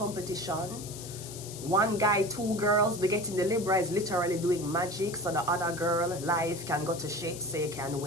1 guy, 2 girls, we're getting the Libra is literally doing magic so the other girl life can go to shit so you can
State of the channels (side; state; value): left; noise; hiss, 12 dB below the sound